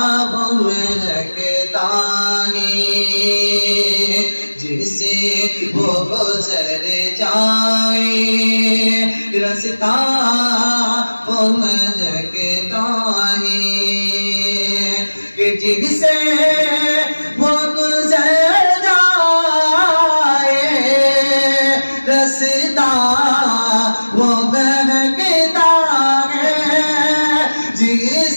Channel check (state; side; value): inverted; both; correlation -1.00